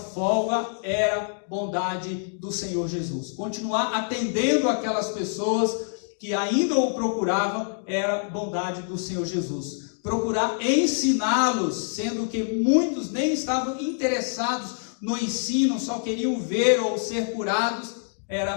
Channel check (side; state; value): right; silent; digital silence